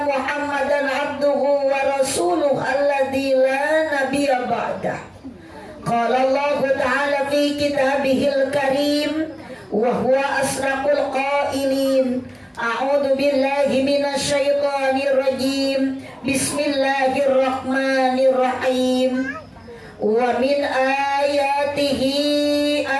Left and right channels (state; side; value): identical; both; correlation 1.00